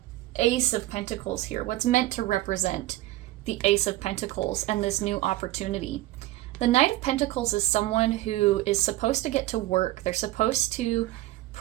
Ace of Pentacles here, what's meant to represent the Ace of Pentacles and this new opportunity. The Knight of Pentacles is someone who is supposed to get to work. They're supposed to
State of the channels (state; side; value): quieter; left; 16.7 dB